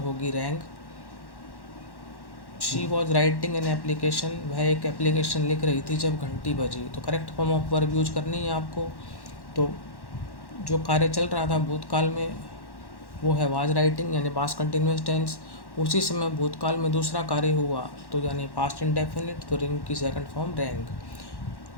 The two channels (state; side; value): late; right; 1.1 ms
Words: होगी wrong. She was writing an application, वह एक एप्लीकेशन लिख रही थी जब घंटी बजी. तो correct form of verb use करनी है आपको. तो जो कार्य चल रहा था भूतकाल में वो है वाज राइटिंग, यानी पास्ट कंटिन्यूअस टेंस. उसी समय भूतकाल में दूसरा कार्य हुआ, तो यानी पास्ट इंडेफिनिट, तो रिंग की second form rang.